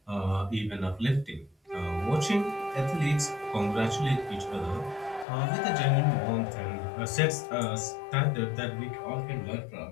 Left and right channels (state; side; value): drops out; right; at 5.2 s